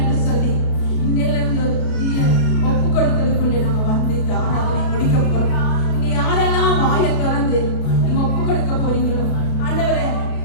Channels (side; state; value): right; late; 33 ms